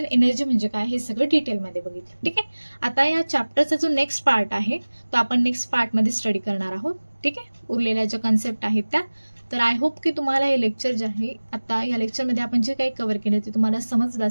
एनर्जी म्हणजे काय हे सगळं डिटेलमध्ये बघितलं. ठीक आहे, आता या चॅप्टरचा जो नेक्स्ट पार्ट आहे तो आपण नेक्स्ट पार्टमध्ये स्टडी करणार आहोत. ठीक आहे, उरलेल्या ज्या कन्सेप्ट आहेत त्या. तर आय होप की तुम्हाला हे लेक्चर जे आहे आता या लेक्चरमध्ये आपण जे काही कव्हर केलं ते तुम्हाला समजलं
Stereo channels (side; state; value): both; inverted; correlation -1.00